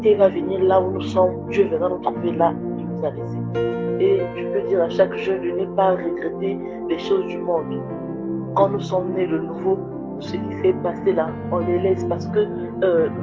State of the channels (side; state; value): left; noise; hum, 28 dB below the sound